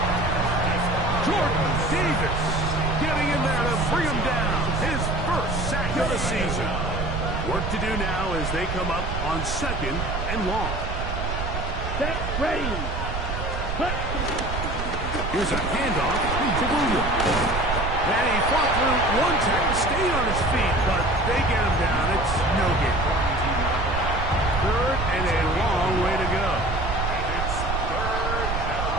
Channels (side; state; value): right; noise; rumble, 3 dB below the sound